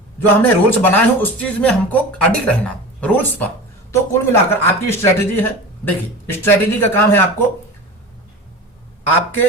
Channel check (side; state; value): both; normal; correlation 0.32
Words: जो हमने रूल्स बनाए हैं उस चीज में हमको अडिग रहना, रूल्स पर। तो कुल मिलाकर आपकी स्ट्रेटेजी है। देखिए, स्ट्रेटेजी का काम है आपको,